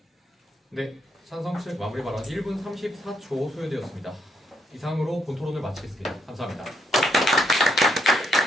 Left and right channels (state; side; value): normal; both; correlation 0.74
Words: 네, 찬성 측 마무리 발언 1분 34초 소요되었습니다. 이상으로 본 토론을 마치겠습니다. 감사합니다.